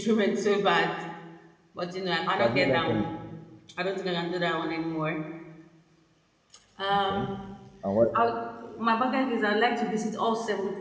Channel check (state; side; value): identical; both; correlation 1.00